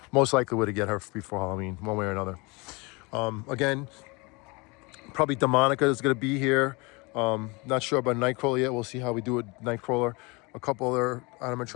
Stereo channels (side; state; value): right; quieter; 27.0 dB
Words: Most likely we're to get her before Halloween, one way or another. Again, probably Demonica is gonna be here. Not sure about Nightcrawler yet. We'll see how we do with Nightcrawler. A couple other